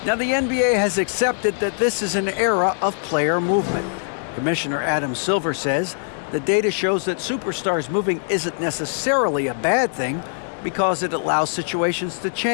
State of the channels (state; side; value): silent; right; digital silence